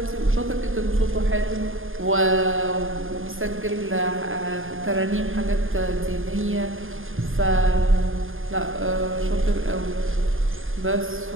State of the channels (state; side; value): late; left; 0.59 ms